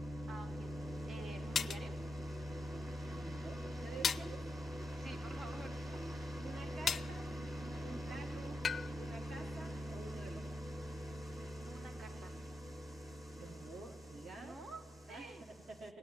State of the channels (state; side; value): normal; both; correlation 0.87